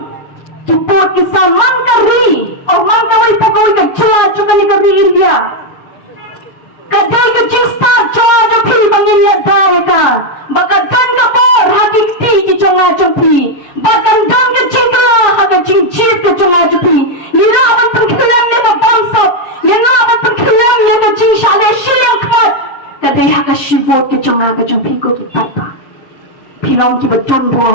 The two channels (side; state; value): right; late; 7.3 ms